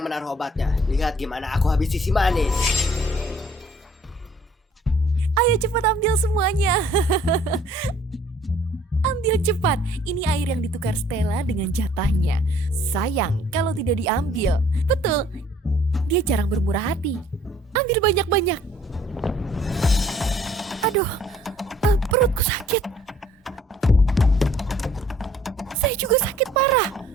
menaruh obatnya. Lihat gimana aku habisi si manis. Ayo cepat ambil semuanya. Ambil cepat. Ini air yang ditukar Stella dengan jatahnya. Sayang kalau tidak diambil. Betul. Dia jarang bermurah hati. Ambil banyak-banyak. Aduh, perutku sakit. Saya juga sakit parah.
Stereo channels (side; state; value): both; normal; correlation 0.58